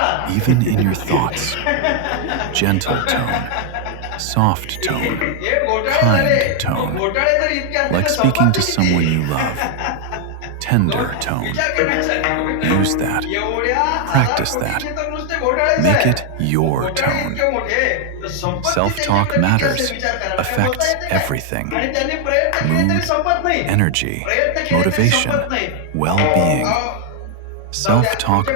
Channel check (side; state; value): both; different; correlation 0.00